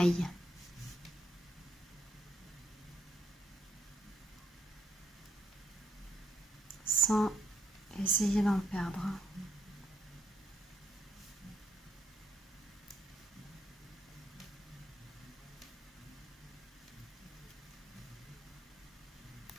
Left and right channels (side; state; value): both; normal; correlation 0.76